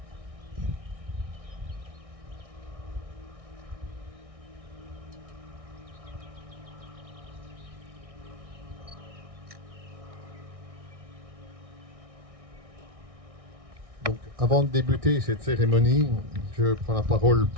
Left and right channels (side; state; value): left; late; 1.6 ms